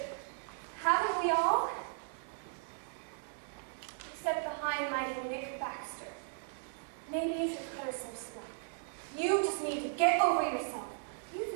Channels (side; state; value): left; silent; digital silence